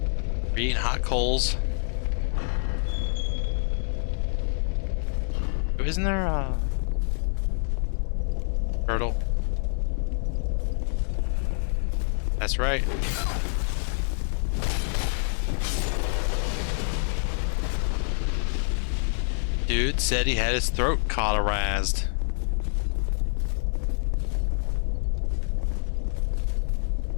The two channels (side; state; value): right; silent; digital silence